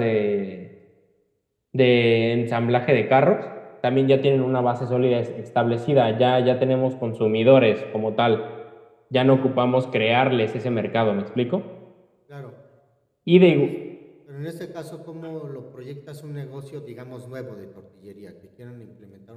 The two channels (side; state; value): both; identical; correlation 1.00